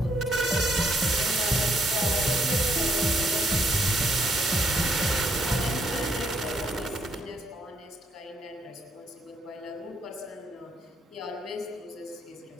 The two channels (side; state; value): both; normal; correlation 0.71